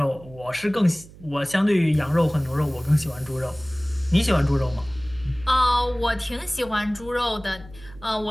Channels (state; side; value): noise; right; hum, 20 dB below the sound